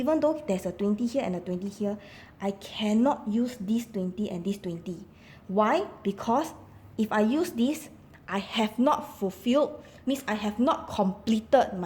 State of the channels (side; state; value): both; identical; correlation 1.00